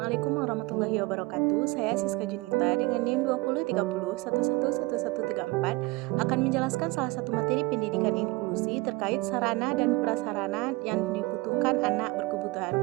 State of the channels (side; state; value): left; quieter; 23.0 dB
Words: Assalamualaikum warahmatullahi wabarakatuh. Saya Siska Junita dengan NIM 2030111134 akan menjelaskan salah satu materi pendidikan inklusi terkait sarana dan prasarana yang dibutuhkan anak berkebutuhan